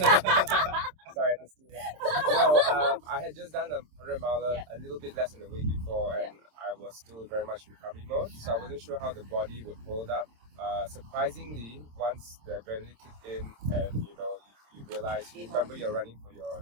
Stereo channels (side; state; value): left; late; 26 ms